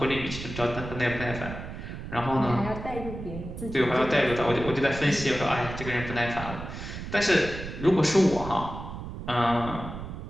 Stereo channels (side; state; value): right; noise; rumble, 9 dB below the sound